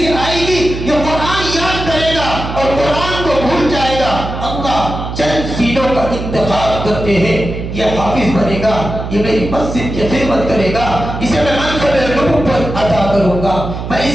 آئے گی، یہ قرآن یاد کرے گا اور قرآن کو بھول جائے گا۔ اللہ چند سینوں کا انتخاب کرتے ہیں، یہ حافظ بنے گا، یہ میری مسجد کی خدمت کرے گا، اسے میں منصب نبوت عطا کروں گا، میں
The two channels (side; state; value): right; noise; hum, 7 dB below the sound